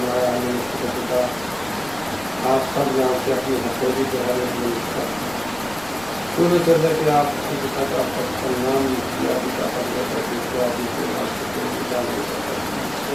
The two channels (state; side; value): noise; left; rumble, 21 dB below the sound